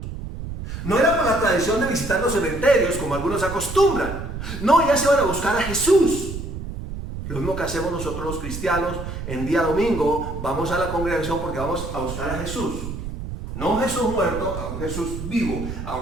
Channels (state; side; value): noise; right; rumble, 8 dB below the sound